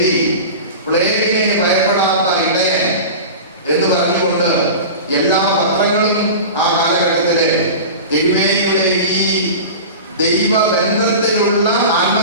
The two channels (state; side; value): inverted; both; correlation -0.32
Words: പ്ലേഗിനെ ഭയപ്പെടാത്ത ഇടയൻ എന്ന് പറഞ്ഞുകൊണ്ട് എല്ലാ പത്രങ്ങളും ആ കാലഘട്ടത്തിലെ തിരുമേനിയുടെ ഈ ദൈവബന്ധത്തിലുള്ള